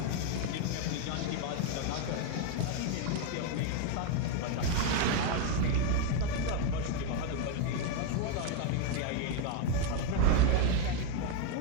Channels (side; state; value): both; different; correlation 0.01